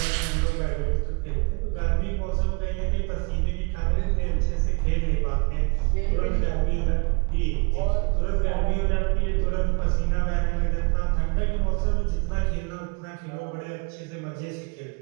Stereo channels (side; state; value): left; quieter; 31.0 dB